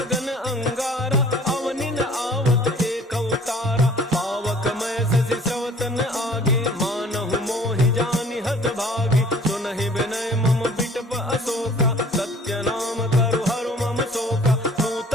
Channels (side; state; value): both; normal; correlation 0.52